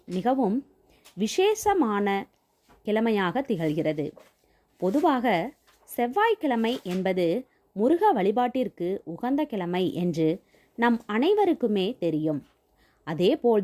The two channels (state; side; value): identical; both; correlation 1.00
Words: மிகவும் விசேஷமான கிழமையாக திகழ்கிறது. பொதுவாக செவ்வாய்க்கிழமை என்பது முருக வழிபாட்டிற்கு உகந்த கிழமை என்று நம் அனைவருக்குமே தெரியும்.